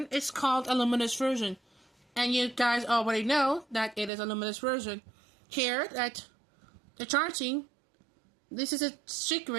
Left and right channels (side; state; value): left; drops out; at 4.1 s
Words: is called a luminous version. And you guys already know that it is a luminous version. Here, that the charging, this is a